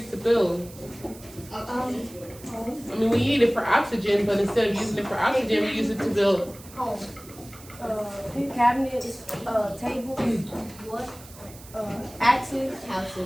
to build? I mean, we need it for oxygen, but instead of using it for oxygen, we use it to build Home. Cabinets, tables, what? Axes.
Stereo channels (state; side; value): noise; right; hiss, 19 dB below the sound